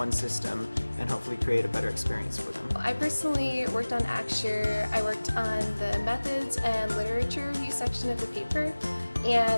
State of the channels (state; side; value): inverted; both; correlation -1.00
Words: system and hopefully create a better experience for them. I personally worked on Acture. I worked on the methods and literature review section of the paper,